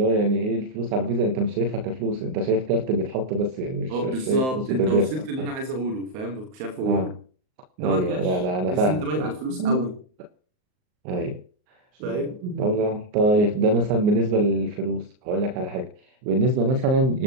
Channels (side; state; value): left; late; 38 ms